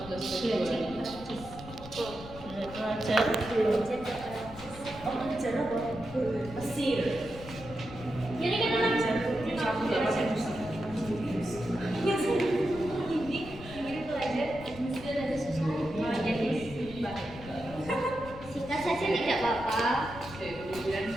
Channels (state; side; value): noise; left; rumble, 14 dB below the sound